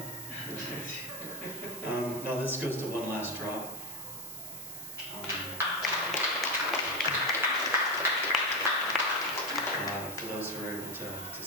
No, this goes to one last drop. For those who were able to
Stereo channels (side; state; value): right; noise; hiss, 12 dB below the sound